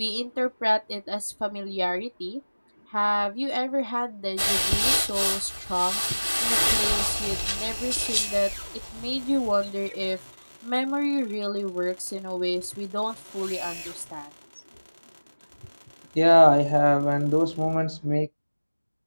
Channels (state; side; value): inverted; both; correlation -1.00